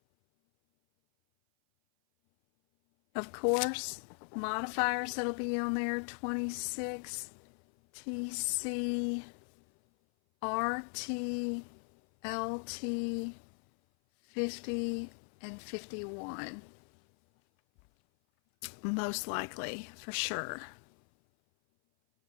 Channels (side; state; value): right; silent; 53 dB below the other